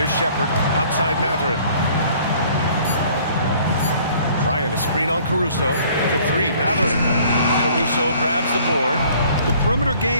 Shepard outside Mathurin. Bryant a screen on Caruso. For 3, Mathurin. Caruso grabs the board. The perimeter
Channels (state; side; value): inverted; both; correlation -0.56